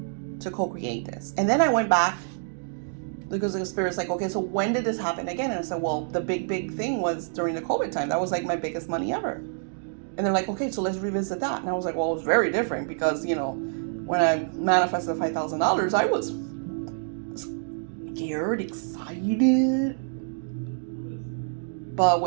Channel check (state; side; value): silent; left; digital silence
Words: to co-create this. And then I went back because the Spirit's like, okay, so when did this happen again? And I said, well, the big thing was during the COVID time. That was like my biggest money ever. And they're like, okay, so let's revisit that. And I was like, well, it was very different because, when I manifested $5,000, I was scared, excited. But